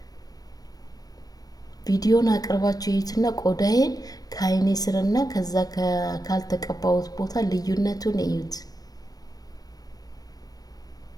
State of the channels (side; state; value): right; late; 0.18 ms